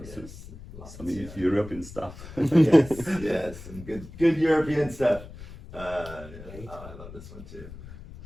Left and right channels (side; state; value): left; noise; rumble, 15 dB below the sound